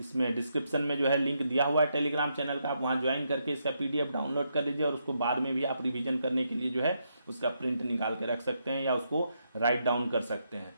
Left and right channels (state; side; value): inverted; both; correlation -0.79